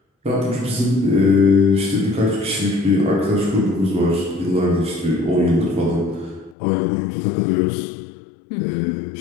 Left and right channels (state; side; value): drops out; right; at 6.6 s